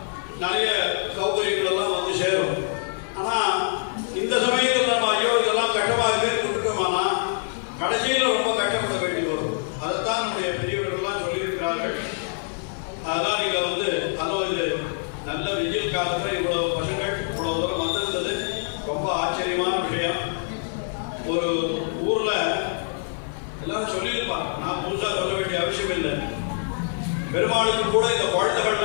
நிறைய சௌகரியங்கள் எல்லாம் வந்து சேரும். ஆனா இந்த சமயத்தில் நம்ம ஐயோ இதெல்லாம் கட்டமாக இருக்கேன்னு கொடுத்தோமானா கடைசியில் ரொம்ப கஷ்டப்பட வேண்டி வரும். அதைத்தான் நம்முடைய பெரியவர்கள்லாம் சொல்லியிருக்கிறார்கள். அதெல்லாம் நீங்க அதுவும் இது நல்ல வெயில் காலத்தில் இவ்வளவு பசங்கள் இவ்வளவு தூரம் வந்திருந்தது ரொம்ப ஆச்சரியமான விஷயம். ஒரு ஊர்ல எல்லாரும் சொல்லியிருப்பாங்க, நான் புதுசா சொல்ல வேண்டிய அவசியம் இல்லை. பெருமாளுக்கு கூட இந்த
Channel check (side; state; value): right; silent; digital silence